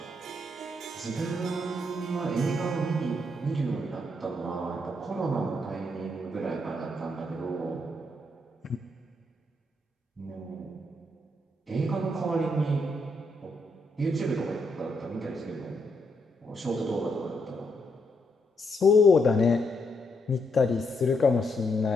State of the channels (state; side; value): normal; both; correlation 0.77